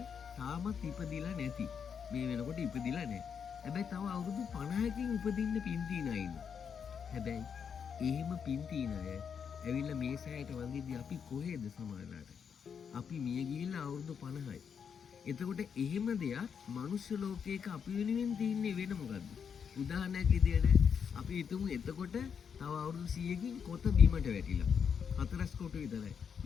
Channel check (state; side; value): quieter; right; 7.0 dB